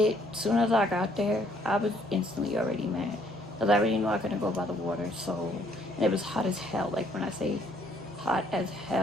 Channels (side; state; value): both; normal; correlation 0.65